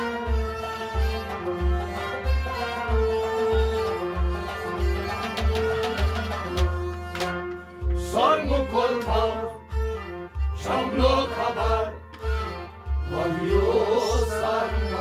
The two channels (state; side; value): identical; both; correlation 1.00